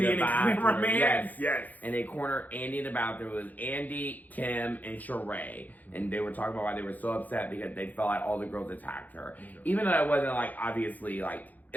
the bathroom. Yes. And they cornered Andy in the bathroom. It was Andy, Kim, and Sheree. And they were talking about why they were so upset because they felt like all the girls attacked her. Even though it wasn't obviously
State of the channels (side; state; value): right; late; 0.081 ms